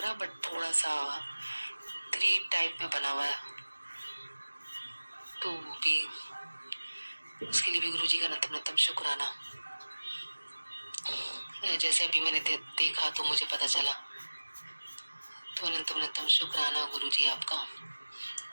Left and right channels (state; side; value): inverted; both; correlation -1.00